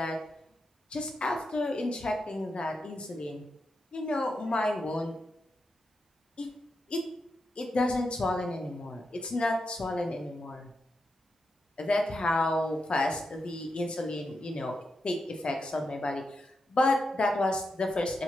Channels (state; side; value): normal; both; correlation 0.86